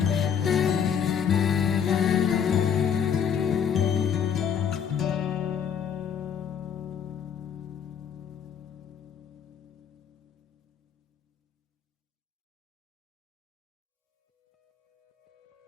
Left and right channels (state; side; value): quieter; right; 7.8 dB